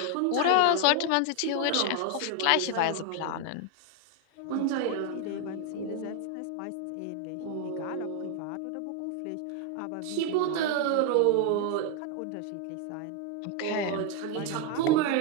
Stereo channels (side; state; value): both; different; correlation 0.01